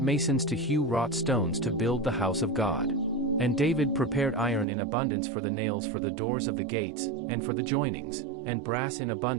to hew wrought stones to build the house of God. And David prepared iron in abundance for the nails for the doors of the gates, and for the joinings, and brass in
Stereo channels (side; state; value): left; drops out; at 4.7 s